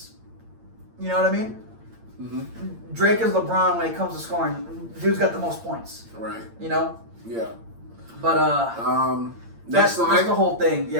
You know what I mean? Mm-hmm. Drake is LeBron when it comes to scoring. Dude's got the most points. Right. Yeah. But that's the whole thing. Yeah,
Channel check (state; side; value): late; left; 8.8 ms